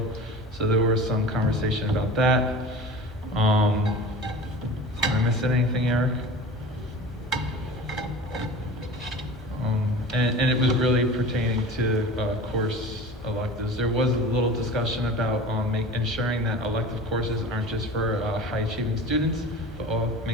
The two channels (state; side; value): normal; both; correlation 0.36